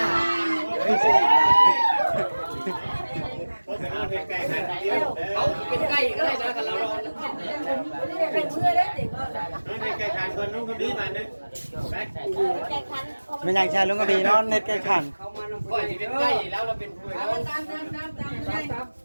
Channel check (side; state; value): both; inverted; correlation -1.00